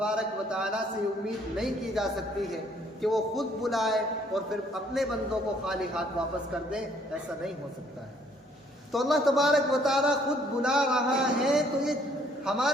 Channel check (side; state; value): both; normal; correlation 0.64